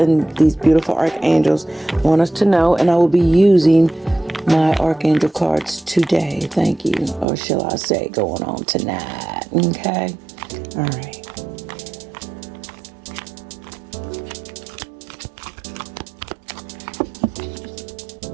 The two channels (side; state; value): left; drops out; at 7.2 s